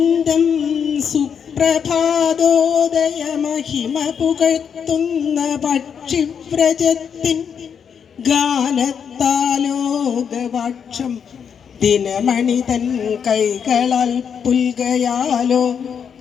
സുപ്രഭാതോദയ മഹിമ പുകഴ്ത്തുന്ന പക്ഷിവ്രജത്തിൻ ഗാനത്താലോകവാക്ഷം ദിനമണി തൻ കൈകളാൽ പുൽകയാലോ.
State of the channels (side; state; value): right; quieter; 7.3 dB